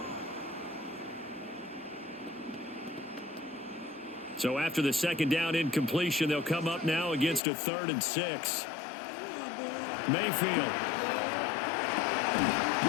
So after the 2nd down incompletion, they'll come up now against a 3rd and 6. Mayfield.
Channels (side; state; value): right; drops out; at 7.4 s